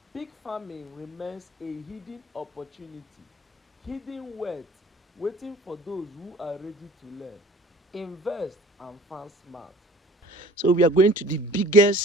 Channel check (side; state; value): both; normal; correlation 0.47